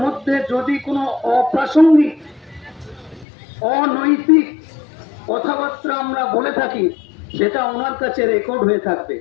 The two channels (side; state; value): right; drops out; at 3.2 s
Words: মধ্যে যদি কোনো অপ্রাসঙ্গিক অনৈতিক কথাবার্তা আমরা বলে থাকি, সেটা ওনার কাছে রেকর্ড হয়ে থাকবে।